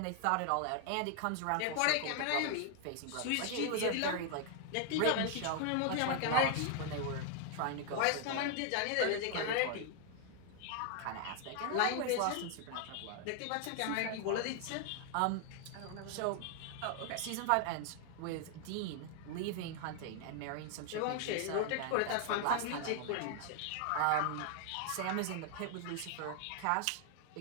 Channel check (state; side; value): different; both; correlation 0.00